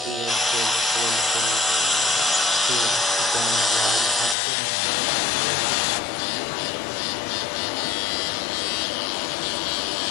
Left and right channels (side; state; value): right; drops out; at 4.4 s